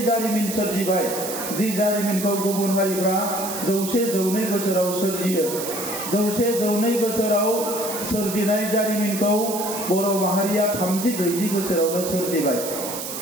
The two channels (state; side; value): noise; right; hiss, 7 dB below the sound